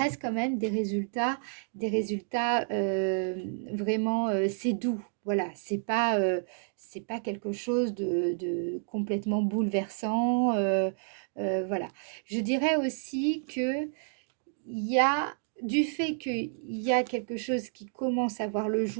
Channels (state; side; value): silent; left; digital silence